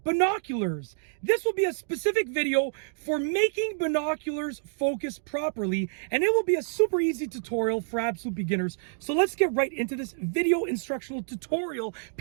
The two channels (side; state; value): left; silent; digital silence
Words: binoculars. This will be a specific video for making binoculars focus properly, and it will be a super easy tutorial for absolute beginners. So let's get right into this video instructional tutorial